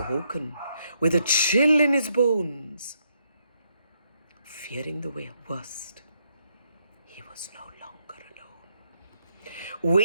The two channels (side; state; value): both; inverted; correlation -0.75